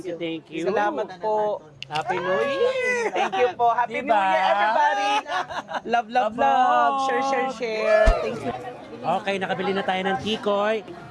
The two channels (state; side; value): identical; both; correlation 1.00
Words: Thank you. Salamat po. Happy New Year! Thank you po. Happy Diba? New Year, everybody! Love, love, love. Share, share, share. Thank you. Okay, nakabili na tayo ng tikoy.